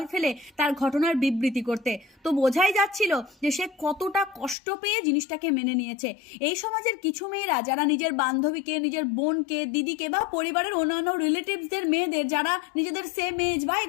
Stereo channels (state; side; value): drops out; right; at 4.5 s